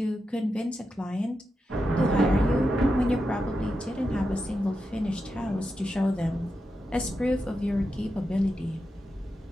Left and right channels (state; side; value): normal; both; correlation 0.88